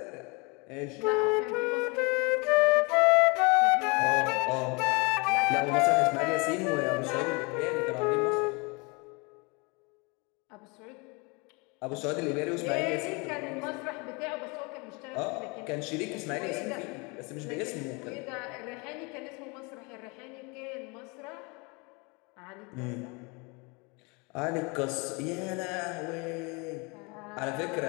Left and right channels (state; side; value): quieter; right; 29.3 dB